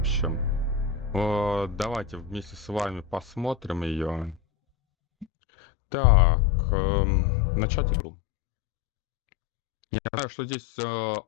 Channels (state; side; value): drops out; right; at 5.2 s